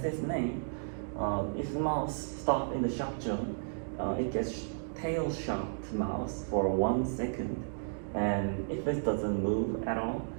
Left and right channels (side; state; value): left; silent; digital silence